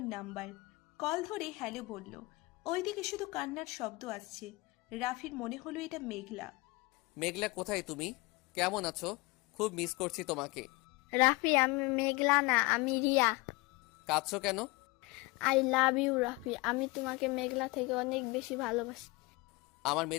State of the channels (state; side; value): quieter; right; 24.2 dB